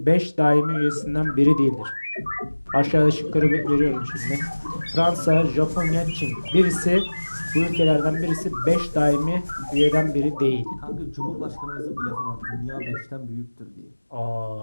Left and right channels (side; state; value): both; inverted; correlation -1.00